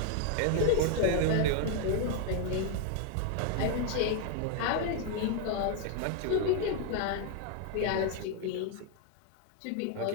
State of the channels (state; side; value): different; both; correlation 0.00